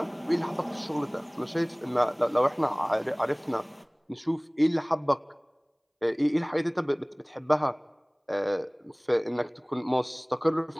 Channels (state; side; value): identical; both; correlation 1.00